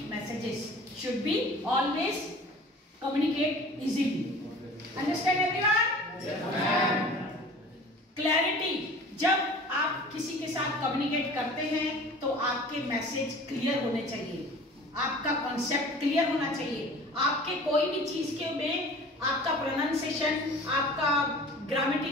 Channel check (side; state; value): both; normal; correlation 0.43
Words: messages should be always communicate easily. Understand everyone? Clarity. जब आप किसी के साथ कम्युनिकेट करते हैं तो आपके मैसेज क्लियर होने चाहिए, आपका कॉन्सेप्ट क्लियर होना चाहिए, आपके कोई भी चीज के में आपका प्रोनाउंसिएशन, आपका